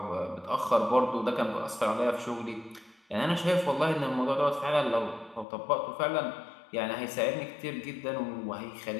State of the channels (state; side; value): drops out; right; at 5.5 s